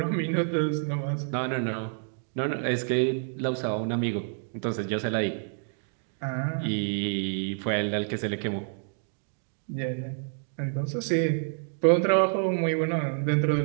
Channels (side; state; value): left; silent; digital silence